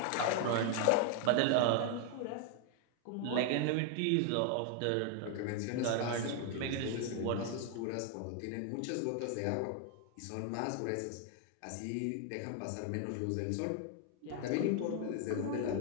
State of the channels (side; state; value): both; different; correlation 0.00